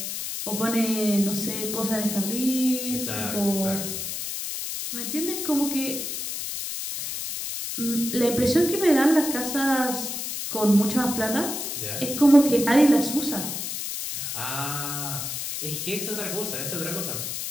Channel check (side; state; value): left; noise; hiss, 5 dB below the sound